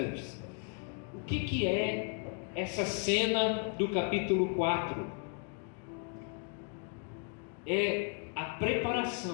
O que é essa cena do capítulo 4? É a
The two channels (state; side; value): quieter; right; 39.5 dB